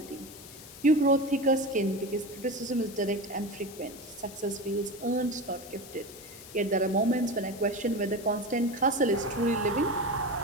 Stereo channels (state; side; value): noise; left; hiss, 17 dB below the sound